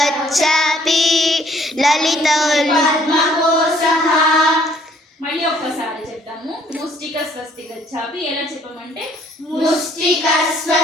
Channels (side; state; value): both; normal; correlation 0.62